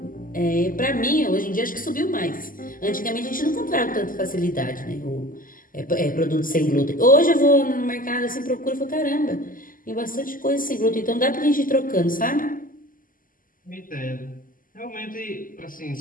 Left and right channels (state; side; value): late; right; 0.41 ms